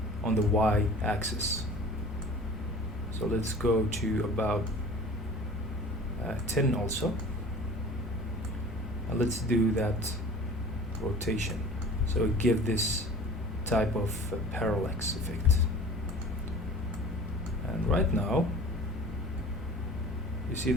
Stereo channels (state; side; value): normal; both; correlation 0.43